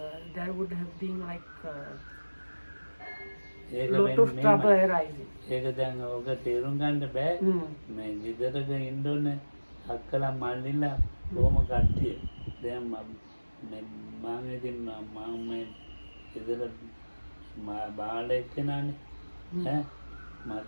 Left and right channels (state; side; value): inverted; both; correlation -1.00